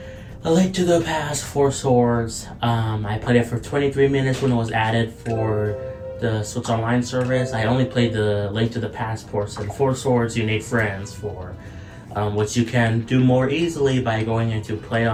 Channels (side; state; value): both; identical; correlation 1.00